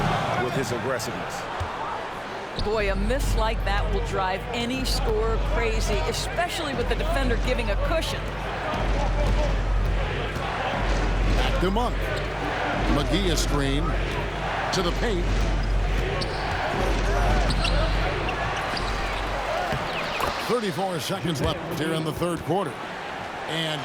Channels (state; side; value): identical; both; correlation 1.00